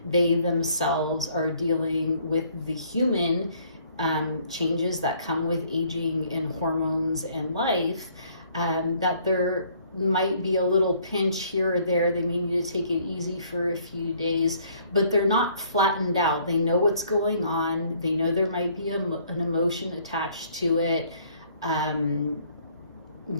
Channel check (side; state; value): both; inverted; correlation -0.62